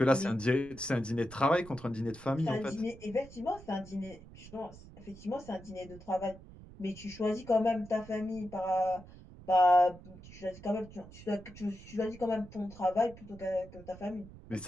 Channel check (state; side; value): noise; right; rumble, 18 dB below the sound